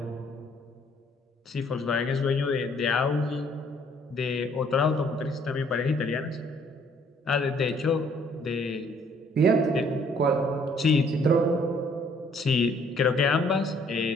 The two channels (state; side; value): normal; both; correlation 0.62